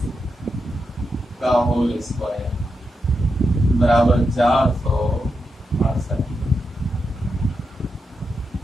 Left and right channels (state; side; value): normal; both; correlation 0.86